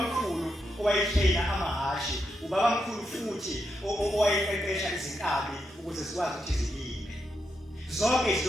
owayehlena amahashi ubabamkhulu futhi owayeqeqesha izinkabi ukuze zikwazi ukuthi zilime. Zonke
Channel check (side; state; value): both; normal; correlation 0.84